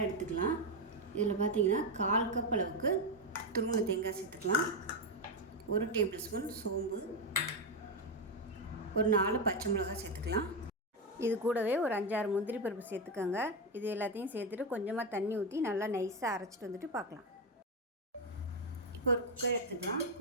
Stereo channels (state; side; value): normal; both; correlation 0.07